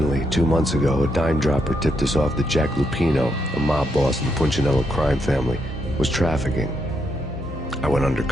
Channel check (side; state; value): both; normal; correlation 0.78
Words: 2 months ago, a dime-dropper tipped us off that Jack Lupino, a mob boss in the Punchinello crime family, was trafficking. I went